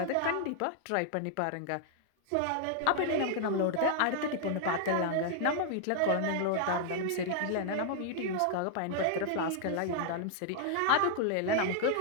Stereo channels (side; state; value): both; different; correlation -0.01